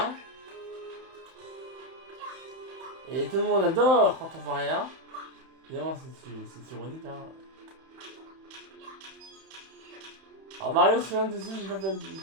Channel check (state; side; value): late; left; 31 ms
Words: Et tout le monde adore quand on voit rien. Évidemment c'est ironique hein. Alors Mario se souvient de ça, j'ai pas fait